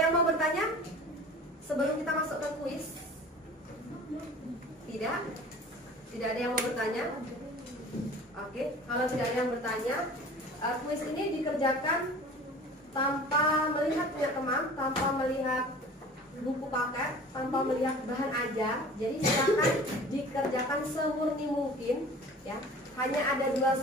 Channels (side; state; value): both; normal; correlation 0.42